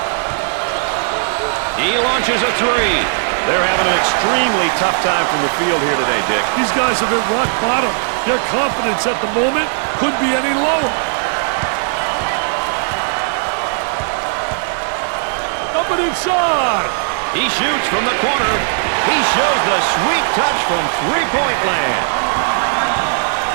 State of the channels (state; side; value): silent; left; 68 dB below the other